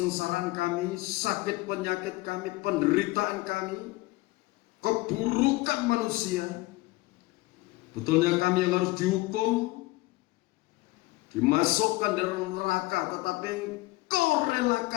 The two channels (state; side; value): quieter; right; 21.0 dB